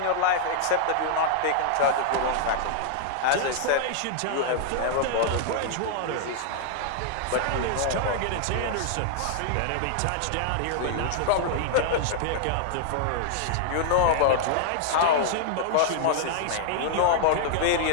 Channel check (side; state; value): both; different; correlation -0.01